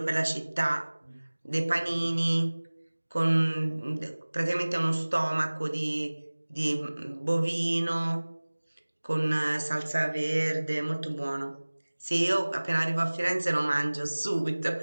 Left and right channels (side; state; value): both; inverted; correlation -1.00